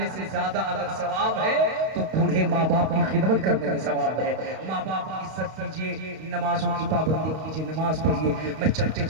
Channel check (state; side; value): late; left; 32 ms